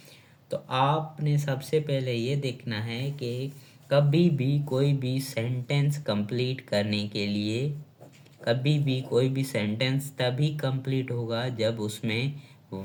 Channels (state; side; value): identical; both; correlation 1.00